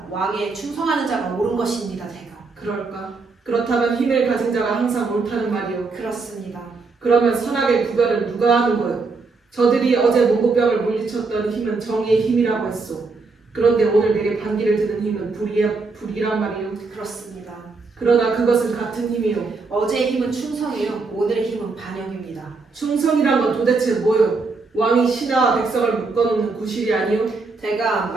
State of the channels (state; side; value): quieter; left; 4.1 dB